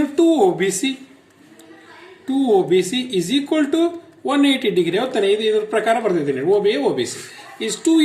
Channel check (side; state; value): both; identical; correlation 1.00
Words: 2OBC is equal to 180 degree. ಹೌದಾನೆ? ಇದ್ರ ಪ್ರಕಾರ ಬರ್ತಿದ್ದೀನಿ. OBC is 2